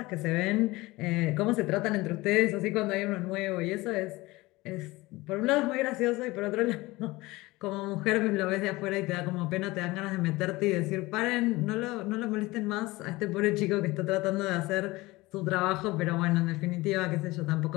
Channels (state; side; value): quieter; right; 20.7 dB